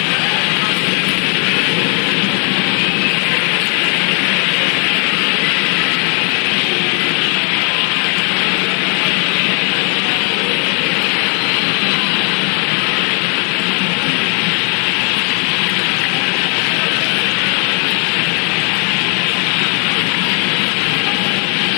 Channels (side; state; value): right; quieter; 38.6 dB